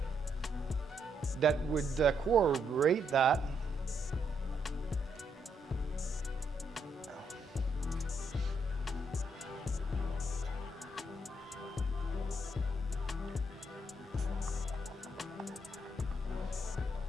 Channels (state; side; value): normal; both; correlation 0.76